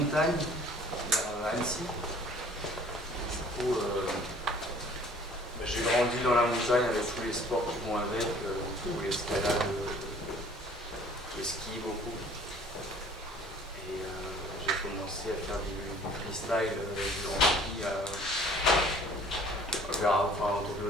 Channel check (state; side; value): normal; both; correlation 0.53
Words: vers Annecy. Du coup, j'ai grandi dans la montagne avec tous les sports qui vont avec, l'escalade, le ski beaucoup. Et j'ai commencé à faire du freestyle, du grand ski